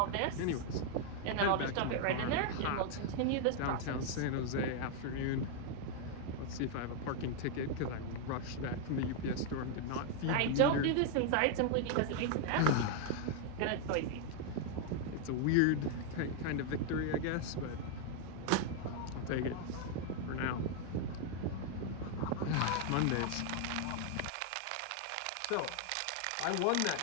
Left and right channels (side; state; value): both; different; correlation 0.00